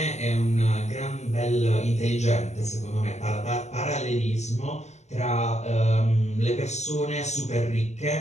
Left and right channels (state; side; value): late; right; 0.33 ms